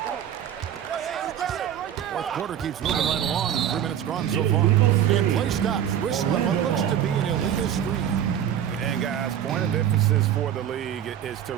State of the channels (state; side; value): quieter; left; 10.0 dB